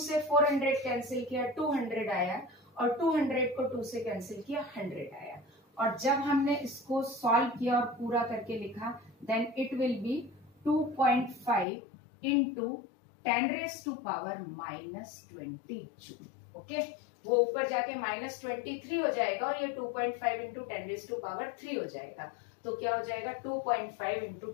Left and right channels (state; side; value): drops out; right; at 11.7 s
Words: 400 कैंसिल किया, 200 आया, और 200 को 2 से कैंसिल किया, 100 आया। और जब हमने इसको सॉल्व किया और पूरा करके लिखा, then it will be 2.5 into 10⁻⁻20 joule. Okay, वो ऊपर जाके -23 हो जाएगा और ये 2.5 इंटू 10⁻³ हो जाएगा। तो क्या हो जाएगा 2.5 इंटू